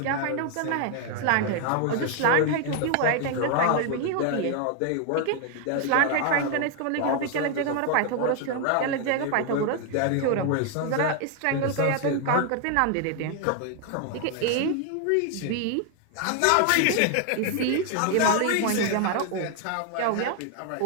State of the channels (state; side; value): different; both; correlation 0.00